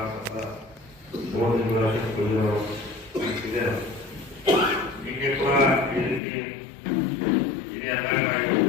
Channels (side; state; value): right; drops out; at 6.2 s